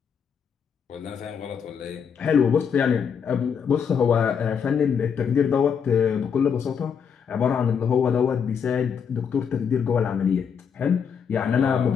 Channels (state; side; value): quieter; right; 7.0 dB